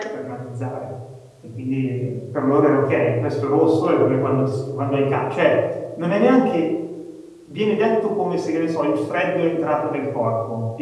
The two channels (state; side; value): identical; both; correlation 1.00